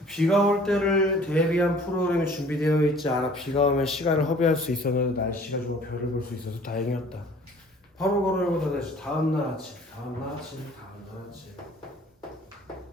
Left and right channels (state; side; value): normal; both; correlation 0.52